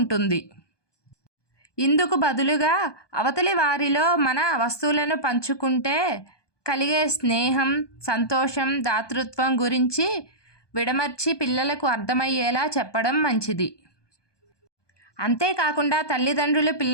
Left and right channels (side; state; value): right; late; 1.2 ms